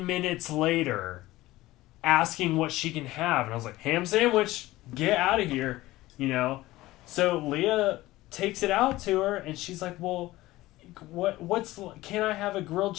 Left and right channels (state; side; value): quieter; right; 17.6 dB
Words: minutes later, asking what she can have. And I was like, ham sandwich, get out of here, So Leah takes it out to her, and she's like, well, can I have a grilled